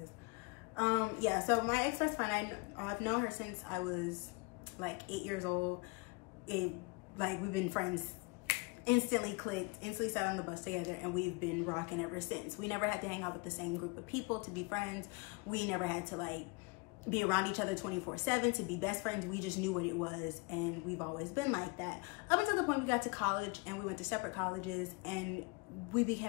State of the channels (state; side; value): quieter; right; 28.2 dB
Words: Yeah, so my ex-best friend, I've known her since I was like 8 years old. We've been friends, instantly clicked, instantly sat on the bus together, and we've been rocking ever since. We never had to hang out with the same group of people to be friends. We never had to like be around each other 24/7 to be best friends. We just knew what it was, and we've always been like that. Up until the point we got to college and we went to separate colleges, and we